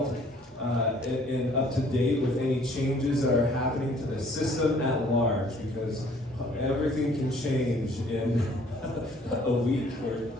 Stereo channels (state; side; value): normal; both; correlation 0.58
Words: and up to date with any changes that are happening to the system at large, because everything can change in a week or